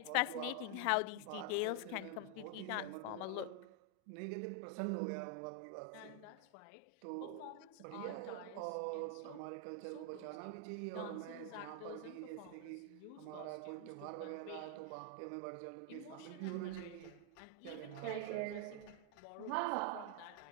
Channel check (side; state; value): both; different; correlation 0.00